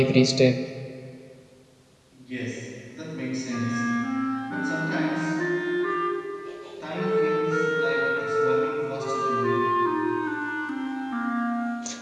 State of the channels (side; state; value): both; identical; correlation 1.00